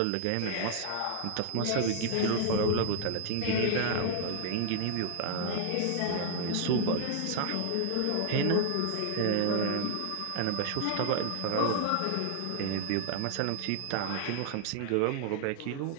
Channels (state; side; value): different; both; correlation 0.00